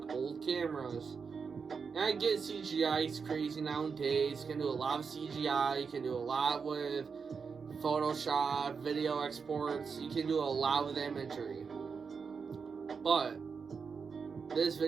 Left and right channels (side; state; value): left; quieter; 5.6 dB